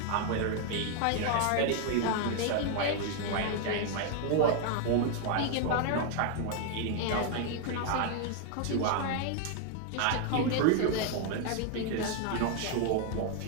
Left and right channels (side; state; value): both; different; correlation 0.00